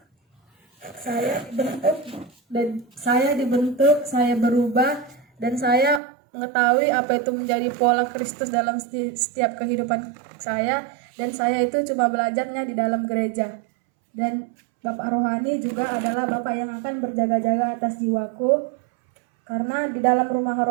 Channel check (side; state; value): left; drops out; at 6.0 s